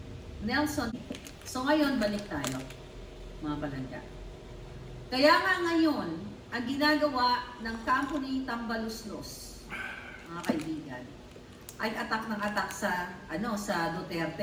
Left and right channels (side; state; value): both; identical; correlation 1.00